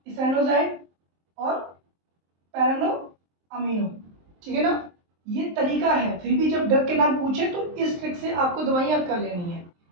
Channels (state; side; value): late; left; 23 ms